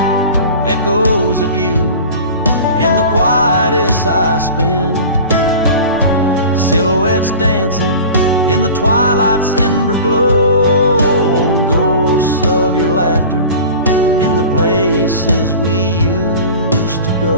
echoes of you in the quietest I spend. Silhouettes dancing in the twilight's ember glow, ghosts of your laughter in the places we used to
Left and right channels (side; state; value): both; inverted; correlation -0.38